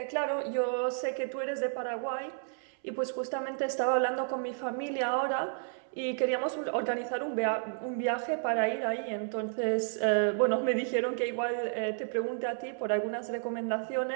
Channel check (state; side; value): silent; left; 57 dB below the other